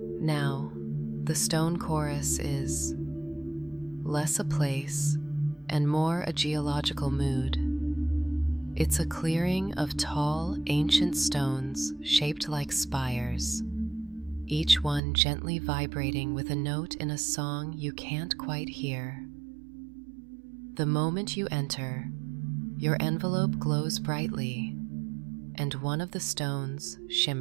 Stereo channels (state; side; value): drops out; left; at 15.0 s